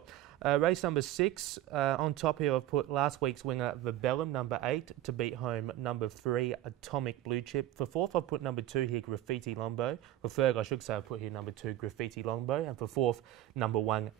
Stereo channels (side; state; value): left; quieter; 13.8 dB